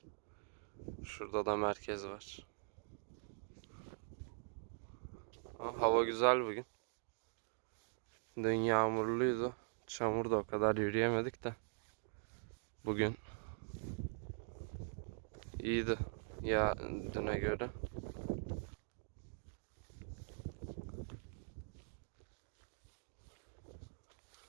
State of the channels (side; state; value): left; silent; digital silence